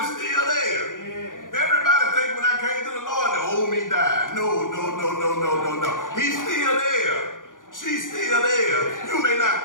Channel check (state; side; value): late; right; 0.88 ms